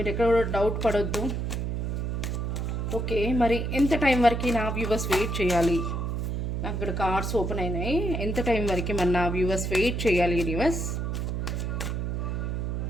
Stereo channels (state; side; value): noise; right; hum, 1 dB below the sound